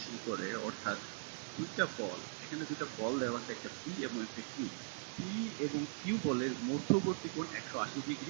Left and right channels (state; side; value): silent; left; digital silence